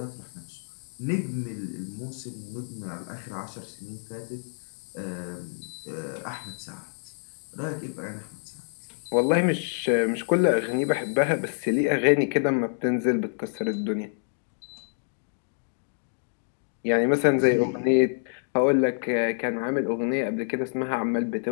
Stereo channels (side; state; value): right; silent; digital silence